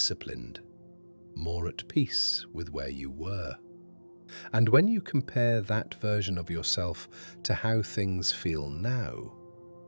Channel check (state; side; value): inverted; both; correlation -1.00